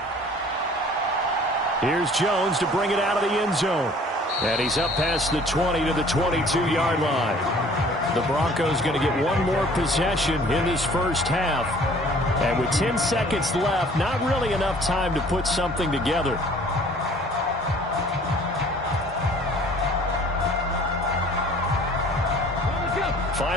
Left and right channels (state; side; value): normal; both; correlation 0.52